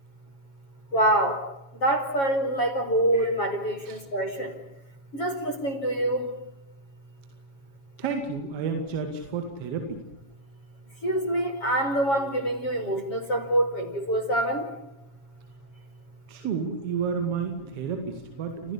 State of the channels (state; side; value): late; right; 7.3 ms